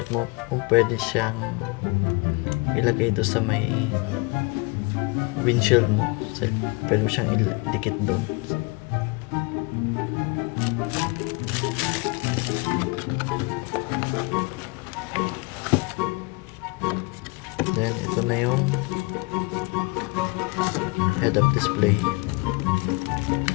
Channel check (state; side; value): quieter; right; 28.5 dB